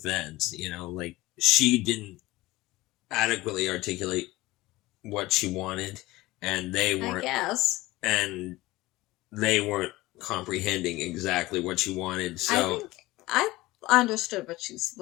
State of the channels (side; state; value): right; quieter; 19.1 dB